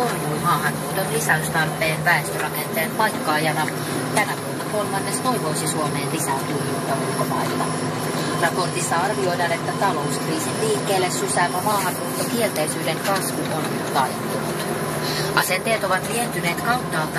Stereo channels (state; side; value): identical; both; correlation 1.00